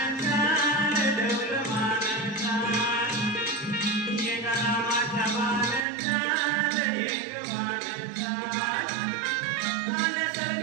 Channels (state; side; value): drops out; left; at 5.9 s